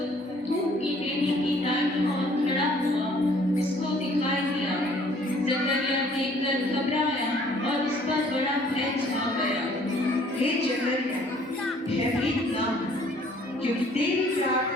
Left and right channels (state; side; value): normal; both; correlation 0.58